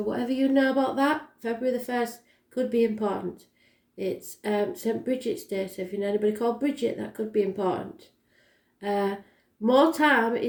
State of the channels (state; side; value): identical; both; correlation 1.00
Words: whatever you know about that, February the 1st could be important. It's St. Bridget's Day, so if you know anybody called Bridget, that could be important. More time